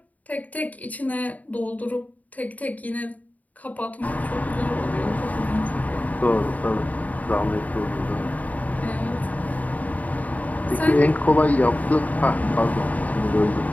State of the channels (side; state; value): right; late; 0.073 ms